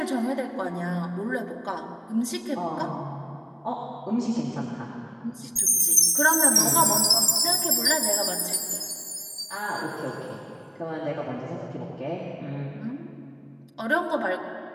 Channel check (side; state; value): both; identical; correlation 1.00